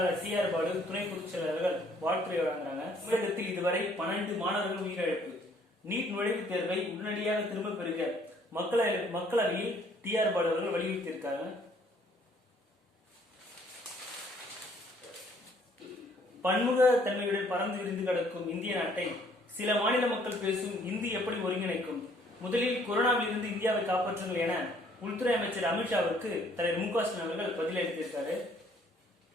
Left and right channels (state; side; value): normal; both; correlation 0.62